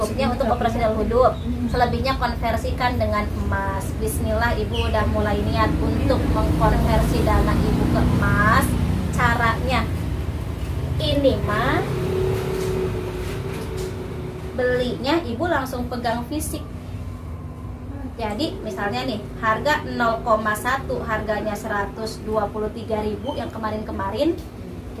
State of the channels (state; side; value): identical; both; correlation 1.00